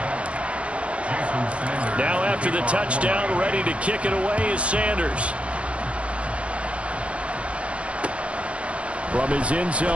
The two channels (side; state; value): left; late; 0.062 ms